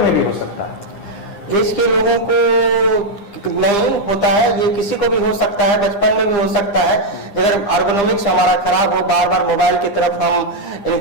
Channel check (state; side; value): late; right; 9.9 ms